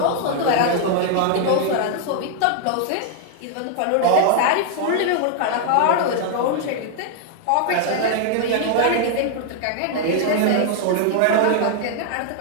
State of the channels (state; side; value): different; both; correlation 0.00